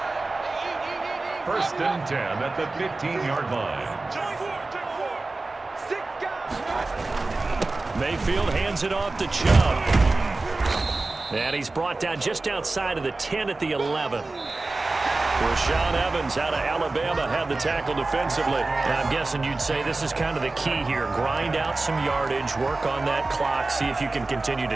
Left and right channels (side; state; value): left; quieter; 3.3 dB